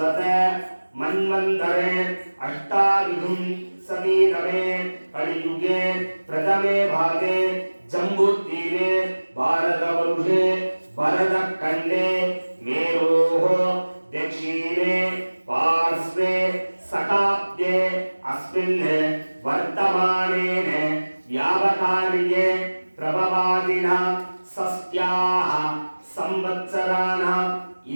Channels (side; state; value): both; inverted; correlation -1.00